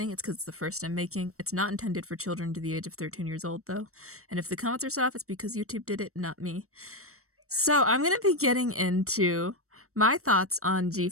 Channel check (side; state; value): left; late; 0.64 ms